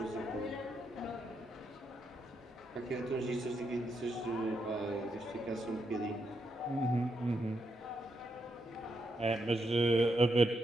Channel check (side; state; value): both; normal; correlation 0.81